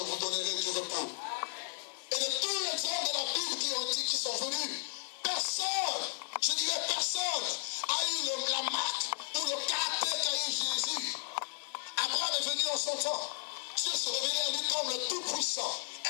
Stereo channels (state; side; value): silent; right; digital silence